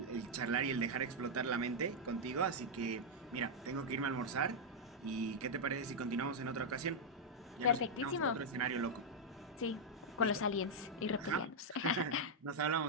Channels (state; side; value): normal; both; correlation -0.03